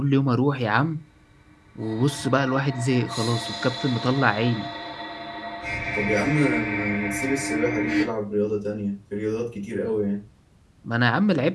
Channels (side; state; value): both; identical; correlation 1.00